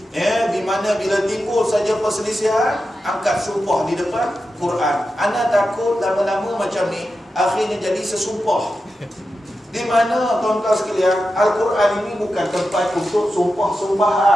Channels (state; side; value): normal; both; correlation 0.90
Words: di mana bila timbul saja perselisihan, angkat sumpah di depan Quran. Ana takut lama-lama macam ni akhirnya jadi sesumpah, di mana tuan-tuan sekalian Al-Quran ini bukan tempat untuk